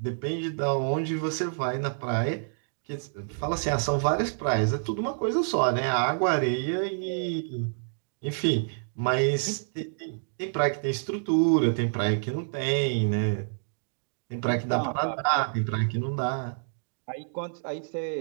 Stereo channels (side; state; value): left; silent; digital silence